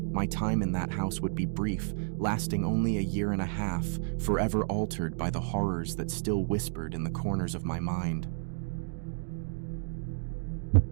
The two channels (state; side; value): silent; left; digital silence